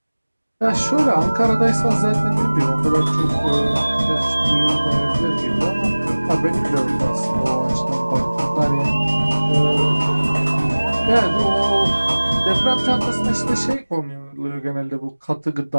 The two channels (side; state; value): both; inverted; correlation -1.00